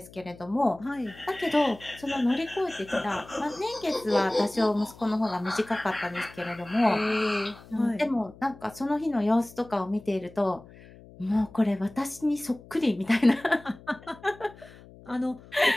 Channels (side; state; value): left; noise; hum, 21 dB below the sound